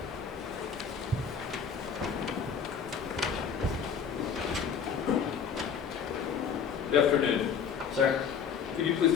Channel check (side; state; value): right; quieter; 6.8 dB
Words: Good afternoon. Sir, Could you